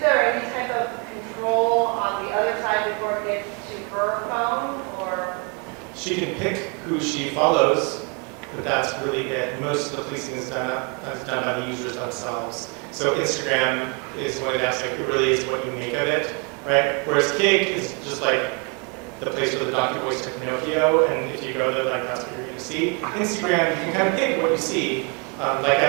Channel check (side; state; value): left; quieter; 34.1 dB